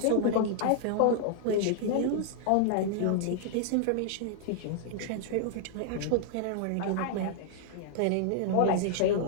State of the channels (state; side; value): different; both; correlation -0.01